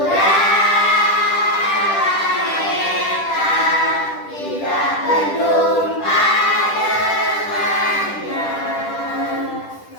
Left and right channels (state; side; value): late; right; 10 ms